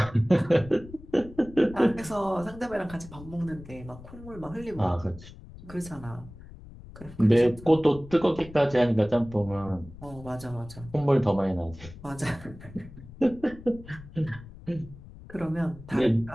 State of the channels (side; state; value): left; noise; rumble, 17 dB below the sound